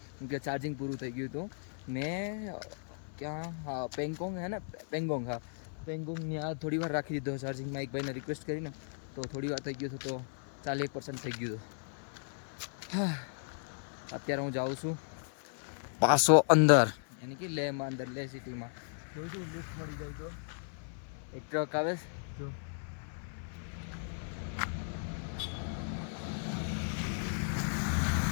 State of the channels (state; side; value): silent; right; 54 dB below the other